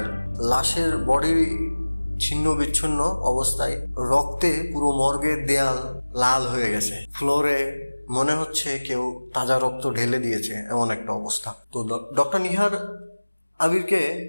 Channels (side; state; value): both; inverted; correlation -1.00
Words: লাশের বডি ছিন্ন বিচ্ছিন্ন অবস্থায়, রক্তে পুরো মর্গের দেয়াল লাল হয়ে গেছে। ফ্লোরে মনে হচ্ছে কেউ তাজা রক্ত ঢেলে দিয়েছে, এমন একটা অবস্থা। তো ডক্টর নিহার আবিরকে